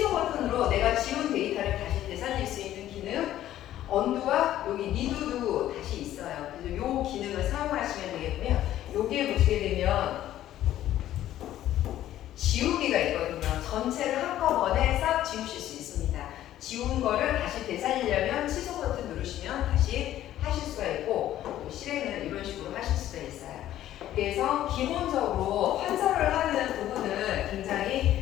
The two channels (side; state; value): right; quieter; 12.9 dB